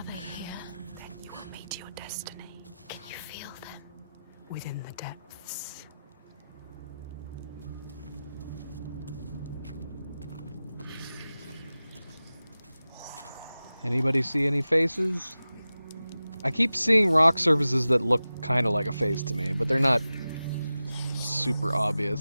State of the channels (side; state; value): both; inverted; correlation -0.95